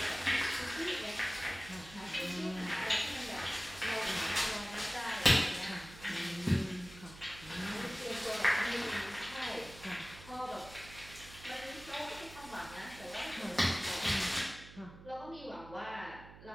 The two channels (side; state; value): right; noise; hum, 17 dB below the sound